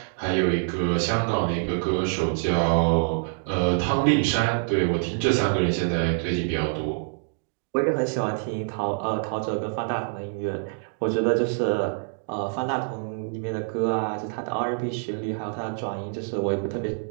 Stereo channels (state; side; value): silent; left; digital silence